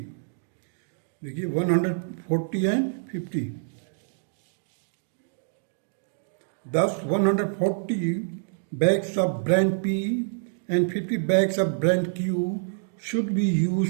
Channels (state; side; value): silent; left; digital silence